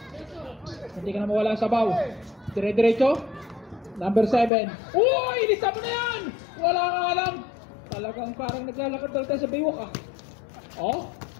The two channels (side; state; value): right; drops out; at 4.5 s